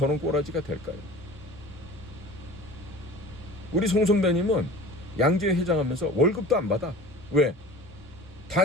꼬라지가 될까요? 우리 송 선배님은 양재 회장하면서 월급도 안 받아. 왜?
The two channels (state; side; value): normal; both; correlation 0.41